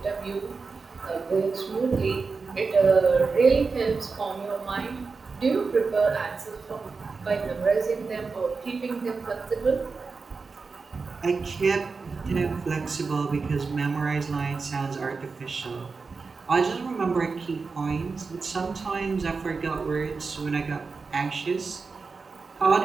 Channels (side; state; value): left; quieter; 4.5 dB